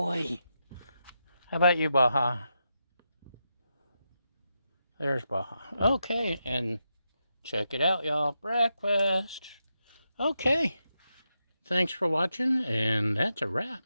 How about you, Baja? There's Baja. Okay, and check it out, y'all. Breakfast. Okay. Thanks for watching, and that's a wrap.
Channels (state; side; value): inverted; both; correlation -0.86